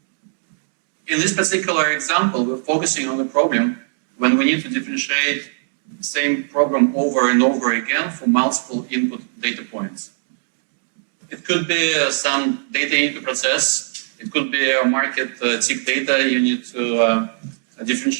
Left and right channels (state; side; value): silent; left; digital silence